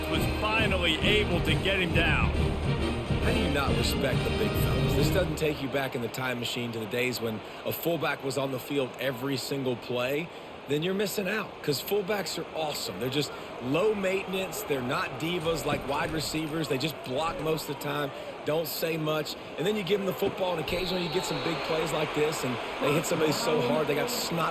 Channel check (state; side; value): identical; both; correlation 1.00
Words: was finally able to get him down. How do you not respect the big fellas? This doesn't take you back in the time machine to the days when a fullback was on the field every single play. Then you're missing out because fullbacks are awesome. They're just low maintenance. They're not divas like wide receivers. They just block most of the time, don't say much. And then you give them the football, and occasionally you get some big plays like this, and they hit somebody so hard they got